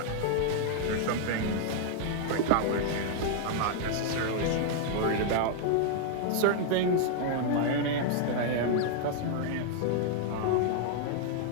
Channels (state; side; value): different; both; correlation -0.01